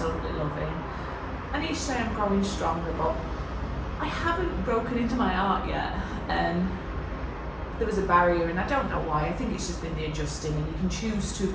loving. And each day I'm growing stronger, but I haven't broken into my art yet, and there was a barrier, and I don't know why. I think it's just been the adjusting, and you can choose to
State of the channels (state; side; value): identical; both; correlation 1.00